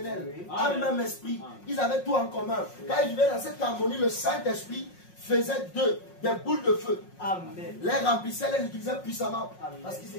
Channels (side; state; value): right; late; 5.5 ms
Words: un même esprit. Ils avaient tout en commun. Quand ils vivaient dans cette harmonie, le Saint-Esprit faisait d'eux des boules de feu. Les remplissait, les utilisait puissamment. Parce qu'ils